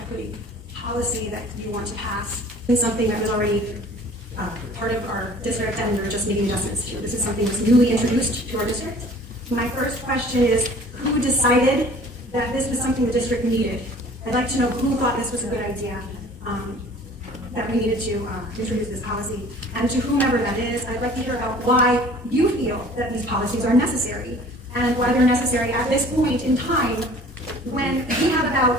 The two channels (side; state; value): both; normal; correlation 0.49